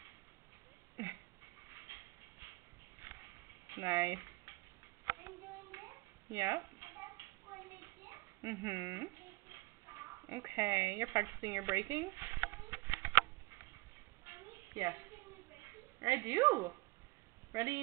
Nice. Yep. Okay, you're practicing your braking? Yes. I do.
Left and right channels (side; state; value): left; quieter; 23.1 dB